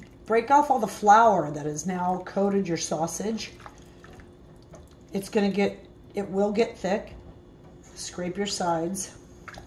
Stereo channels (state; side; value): identical; both; correlation 1.00